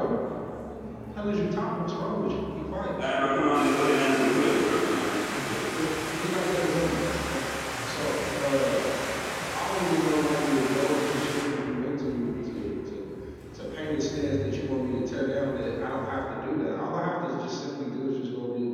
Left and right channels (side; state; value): both; identical; correlation 1.00